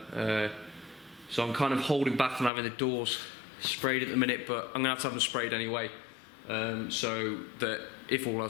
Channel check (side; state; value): right; drops out; at 2.5 s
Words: So I'm kind of holding back on having the doors sprayed at the minute, but I'm going to have them sprayed anyway, so that if all